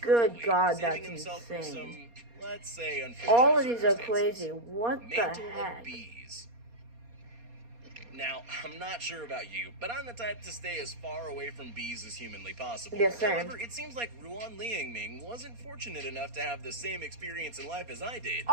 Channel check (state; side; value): late; left; 4.2 ms